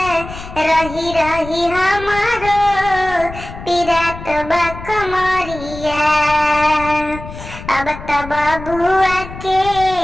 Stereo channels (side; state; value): left; noise; rumble, 12 dB below the sound